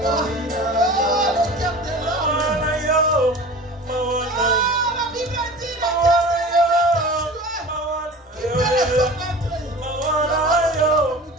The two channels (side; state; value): both; normal; correlation 0.38